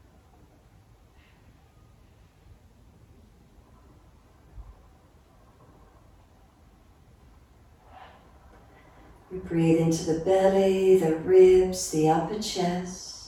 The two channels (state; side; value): identical; both; correlation 1.00